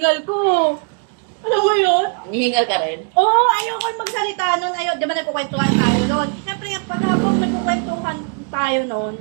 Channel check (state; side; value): quieter; left; 39.0 dB